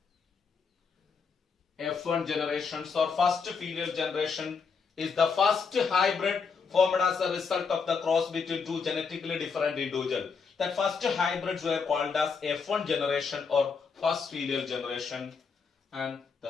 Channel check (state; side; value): quieter; right; 5.4 dB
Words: F1 generations or first filial generation is the first hybrid formed as a result of the cross between two genetically different individuals. That first hybrids were called as F1 generation or first filial generation, and